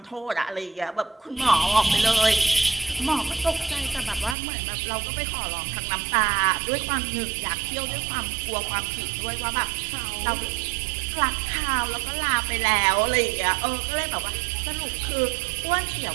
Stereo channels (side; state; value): left; drops out; at 4.4 s